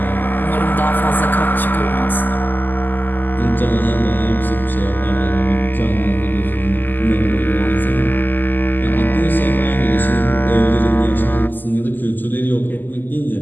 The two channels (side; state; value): right; late; 0.088 ms